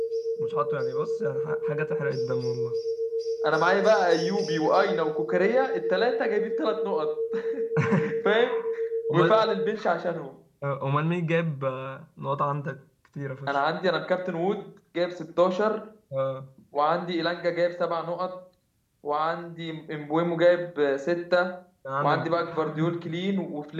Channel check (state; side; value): identical; both; correlation 1.00